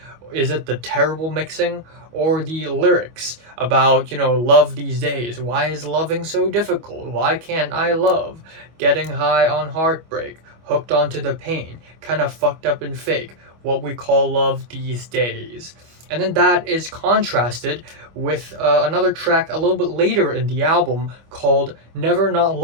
Is it the terrible mixing? Or the lyrics about, love these days? Why is loving so difficult? Why can't I love? Getting high on heartbreak, hooked onto the pain, kind of fucked up and fake, what we call love these days. And then that is contrasted with another track a little bit later in the album called Never Not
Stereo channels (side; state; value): left; late; 25 ms